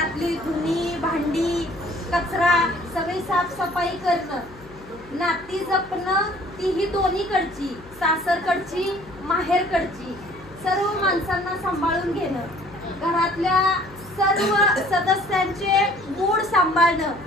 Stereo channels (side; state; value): left; noise; hum, 22 dB below the sound